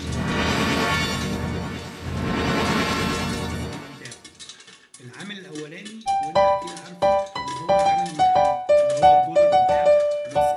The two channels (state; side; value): identical; both; correlation 1.00